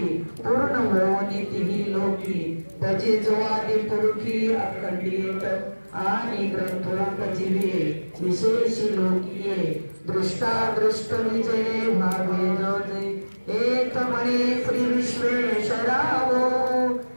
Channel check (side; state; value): both; inverted; correlation -1.00